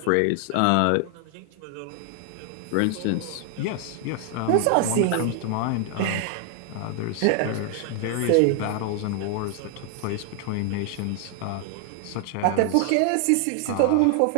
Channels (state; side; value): different; both; correlation 0.00